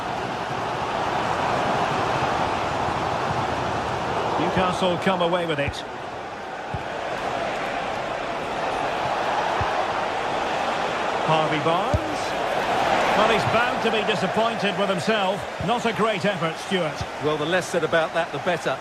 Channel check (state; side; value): identical; both; correlation 1.00